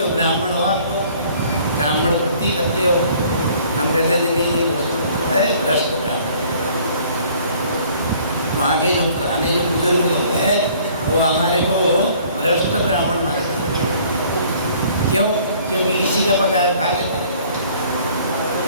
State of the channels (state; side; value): inverted; both; correlation -0.56